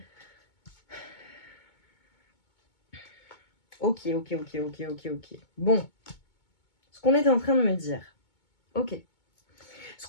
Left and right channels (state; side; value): late; right; 2.2 ms